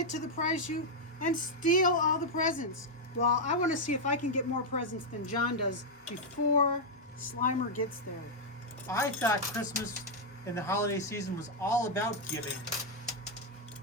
to the prize chute and steal all the presents. Well, I want to see if I can get more presents than John does before Slimer gets there. I thought Christmas and the holiday season was all about giving,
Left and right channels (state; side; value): normal; both; correlation -0.02